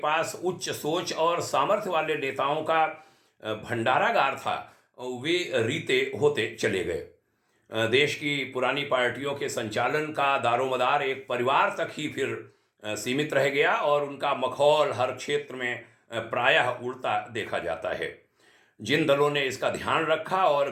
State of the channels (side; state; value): both; identical; correlation 1.00